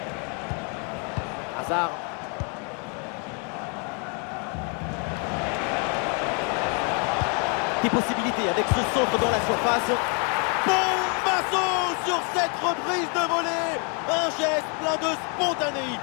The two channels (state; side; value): quieter; right; 36.8 dB